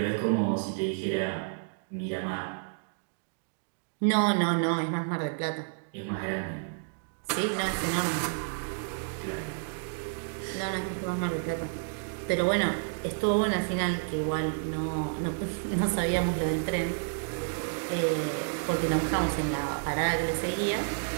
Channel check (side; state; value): left; silent; digital silence